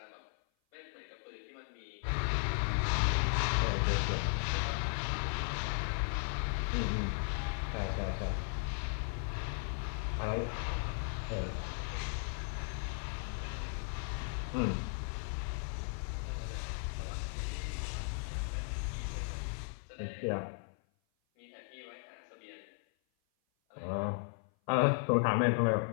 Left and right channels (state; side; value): silent; right; 53 dB below the other